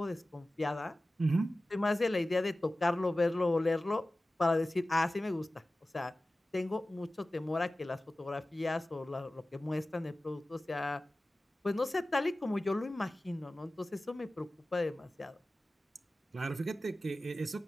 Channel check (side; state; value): both; normal; correlation 0.96